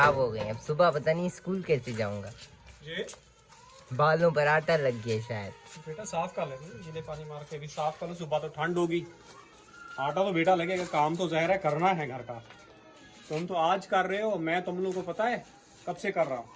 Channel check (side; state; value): both; identical; correlation 1.00